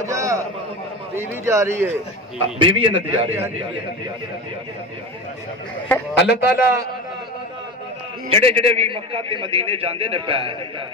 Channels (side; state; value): both; normal; correlation 0.25